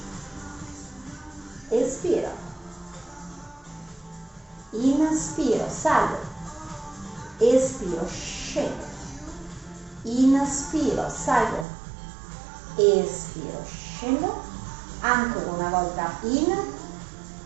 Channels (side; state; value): left; drops out; at 11.7 s